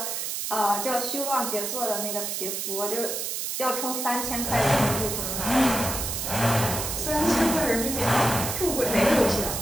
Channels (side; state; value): right; noise; hiss, 3 dB below the sound